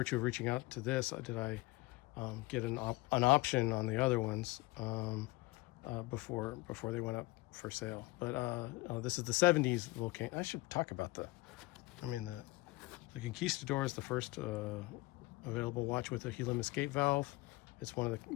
of reaching out to this did I get an option on the other ones before they went up for sale. But this is the 70s Vulcain. I should talk about the Conquistador is the first available watch with a helium escape valve. It's one of the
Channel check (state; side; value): quieter; right; 21.8 dB